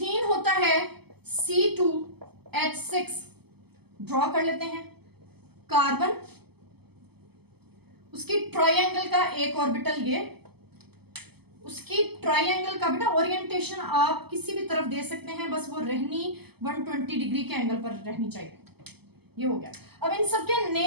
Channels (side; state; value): left; late; 0.97 ms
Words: होता है C2H6, ड्रॉ कर लेते हैं। कार्बन, उसकी ट्रायंगल का एक ऑर्बिटल ये, उसकी ट्रायंगल का बेटा ओरिएंटेशन आप किसी भी तरफ दे सकते हैं, बस वो रहनी 120 डिग्री के एंगल पर रहनी चाहिए। ये हो गया। अब इन सब के